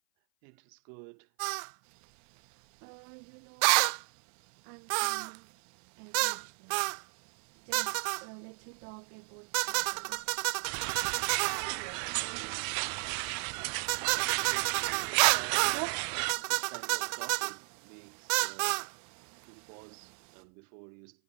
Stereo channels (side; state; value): left; silent; 56 dB below the other